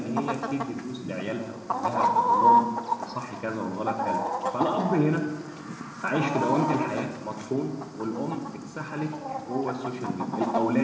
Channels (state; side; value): identical; both; correlation 1.00